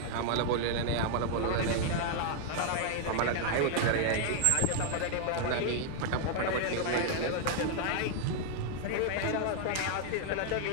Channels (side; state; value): both; different; correlation 0.00